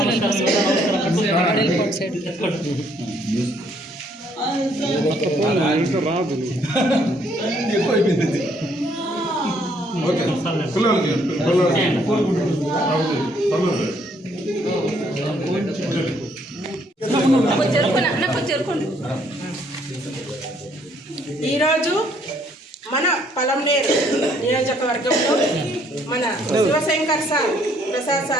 సైడ్ ఇంకా రాదు. ఎక్కువైపోయింది. ఓకే పిల్లలకి చెరుకోండి. ఈరోజు మన పలంనేరు నియోజకవర్గంలో మన శివశంకర్ సార్ ప్రసాద్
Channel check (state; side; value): normal; both; correlation 0.67